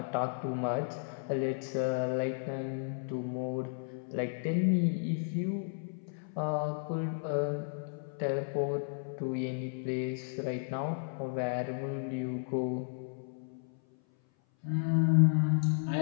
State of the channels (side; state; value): right; silent; 55 dB below the other